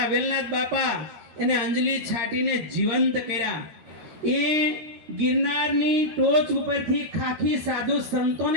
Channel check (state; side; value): late; left; 13 ms